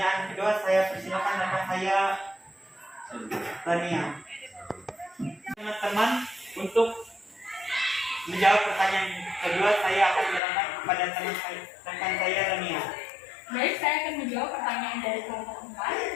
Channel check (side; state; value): right; drops out; at 10.4 s